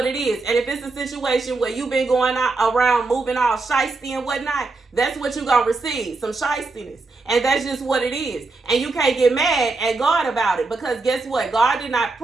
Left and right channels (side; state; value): left; quieter; 3.7 dB